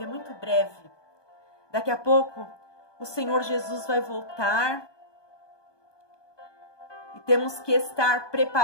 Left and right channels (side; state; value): right; late; 1.2 ms